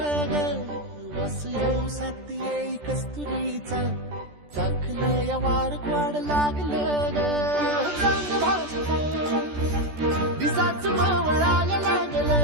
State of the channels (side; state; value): left; late; 14 ms